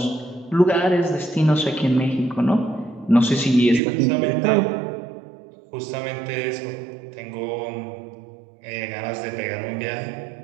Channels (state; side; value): drops out; left; at 3.8 s